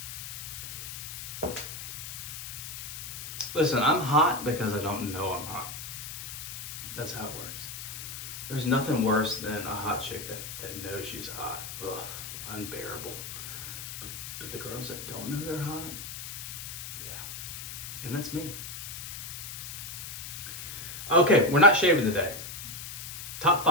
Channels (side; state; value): left; noise; hiss, 8 dB below the sound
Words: Listen, I'm hot because I don't know I'm hot. That's how it works. There's nothing worse than a hot chick that knows she's hot. Ugh, unbearable. But the girls that don't know they're hot, yeah. And that's me. Okay, we're not shaving today. Top